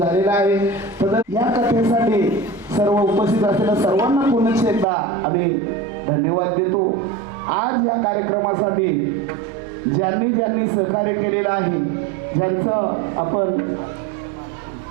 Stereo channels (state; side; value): drops out; left; at 4.9 s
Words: आहे. तर या कथेसाठी सर्व उपस्थित असलेल्या सर्वांना पुन्हा एकदा आम्ही धन्यवाद देतो. आज या कार्यक्रमासाठी ज्यांनी ज्यांनी सहकार्य केलेलं आहे, ज्यांचं आपण